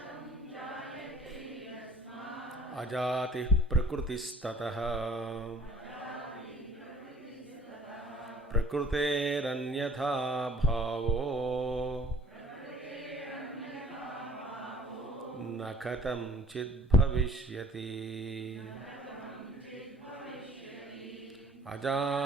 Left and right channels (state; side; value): normal; both; correlation 0.52